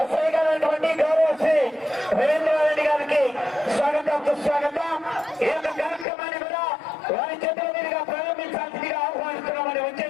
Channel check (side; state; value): right; drops out; at 6.1 s